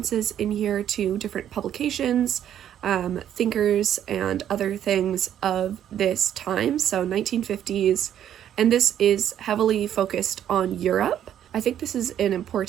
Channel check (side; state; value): left; quieter; 10.4 dB